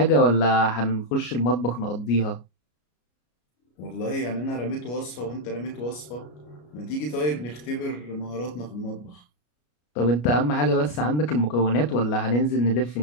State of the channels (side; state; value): right; late; 33 ms